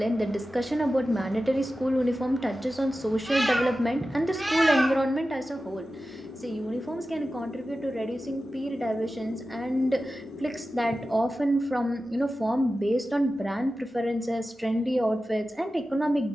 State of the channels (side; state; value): both; normal; correlation 0.94